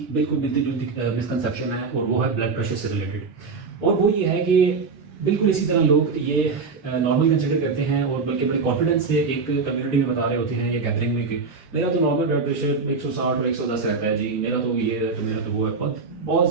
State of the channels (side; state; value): left; quieter; 4.6 dB